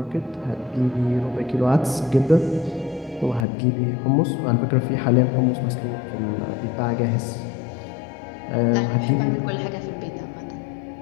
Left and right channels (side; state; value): right; drops out; at 3.5 s